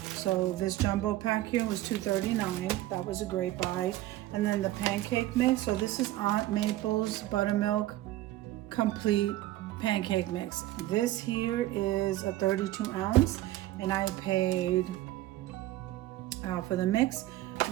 So this jumbo pack here was $2.39. That was a great buy. And then the pancake mix. So this is Aunt Maple's Buttermilk Complete Pancake Mix. This here is a 32 ounce, and I paid for the mix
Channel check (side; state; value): left; quieter; 15.8 dB